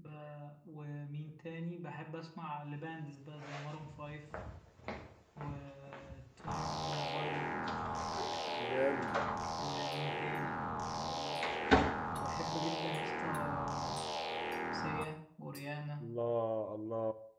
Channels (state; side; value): identical; both; correlation 1.00